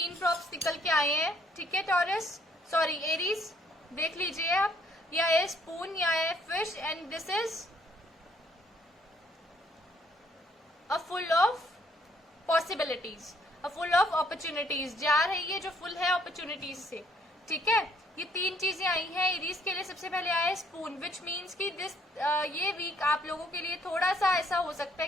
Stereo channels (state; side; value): normal; both; correlation 0.66